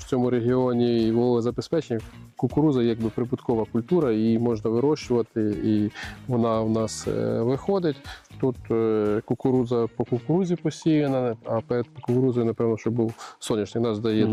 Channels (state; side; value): identical; both; correlation 1.00